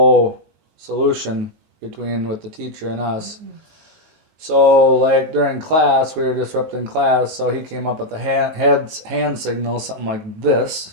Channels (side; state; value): left; late; 19 ms